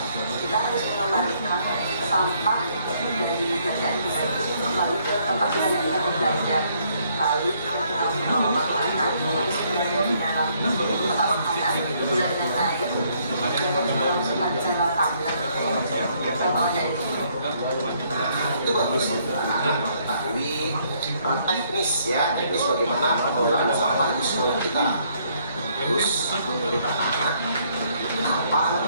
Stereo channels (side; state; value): both; inverted; correlation -0.68